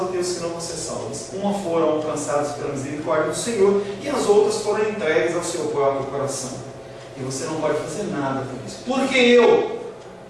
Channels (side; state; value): both; identical; correlation 1.00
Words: e tem os que não vão ser salvas. Uma foram alcançadas pela misericórdia do Senhor e as outras foram entregues ao seu próprio coração. E você não pode fazer nada por isso. Por que eu?